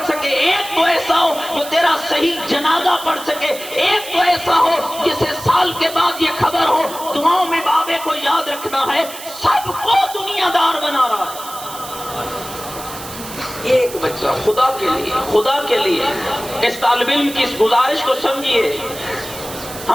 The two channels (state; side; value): noise; right; hiss, 13 dB below the sound